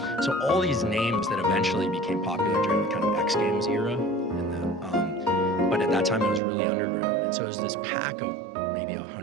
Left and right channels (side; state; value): left; drops out; at 6.4 s